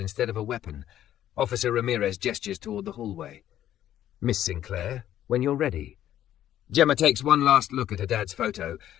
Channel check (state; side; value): quieter; right; 11.8 dB